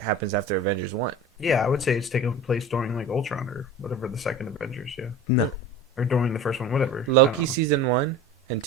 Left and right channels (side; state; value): both; normal; correlation 0.35